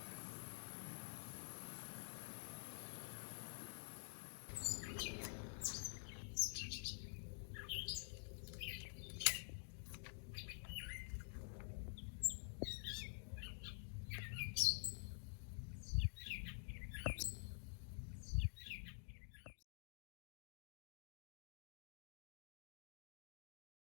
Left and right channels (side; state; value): right; silent; digital silence